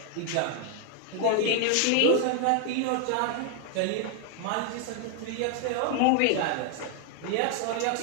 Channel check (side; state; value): both; different; correlation 0.00